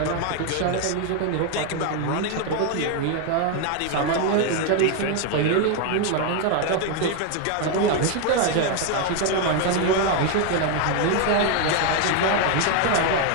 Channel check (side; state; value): both; different; correlation 0.01